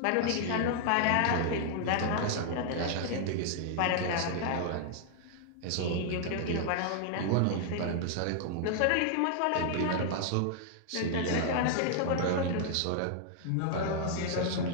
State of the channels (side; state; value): both; different; correlation -0.01